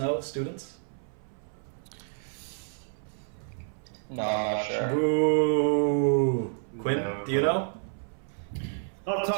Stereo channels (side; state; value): left; silent; 58 dB below the other